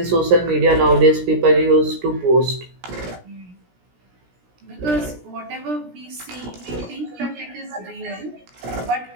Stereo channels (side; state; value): left; late; 17 ms